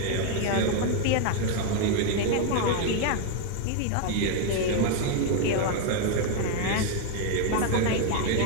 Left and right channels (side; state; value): both; different; correlation 0.00